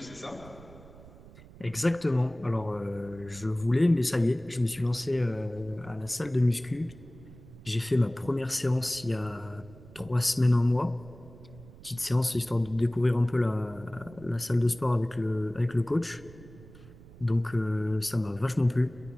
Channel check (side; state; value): right; noise; rumble, 20 dB below the sound